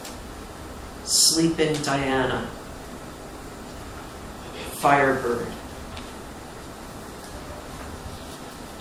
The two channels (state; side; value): identical; both; correlation 1.00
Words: Sleeping Diana, Firebird.